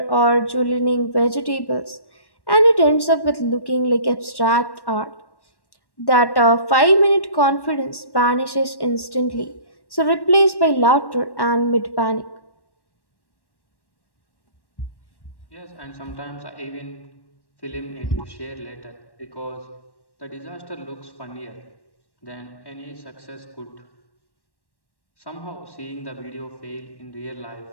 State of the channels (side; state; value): right; late; 1.1 ms